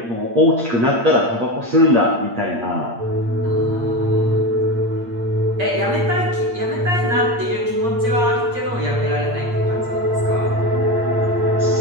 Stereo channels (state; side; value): late; left; 8.6 ms